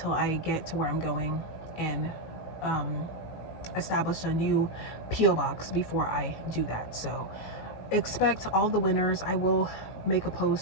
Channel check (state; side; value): late; right; 18 ms